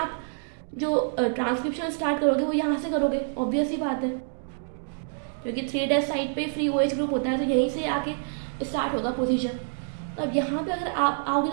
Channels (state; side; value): silent; left; digital silence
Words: जो ट्रांसक्रिप्शन स्टार्ट करोगे वो यहाँ से करोगे, ऑब्वियस ही बात है, क्योंकि 3' साइड पे फ्री OH ग्रुप होता है, तो यहीं से आके स्टार्ट होगा पोजीशन। तो अब यहाँ पे अगर आप आओगे